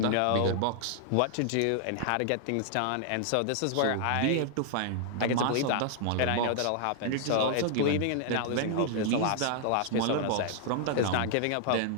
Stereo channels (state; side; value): different; both; correlation 0.00